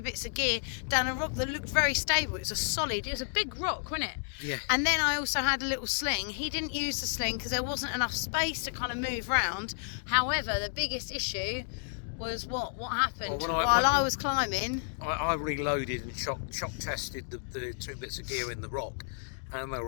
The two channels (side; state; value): right; silent; digital silence